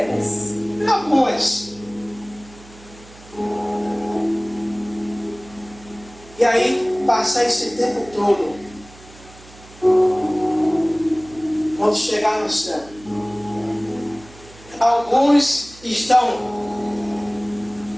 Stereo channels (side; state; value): right; noise; hum, 22 dB below the sound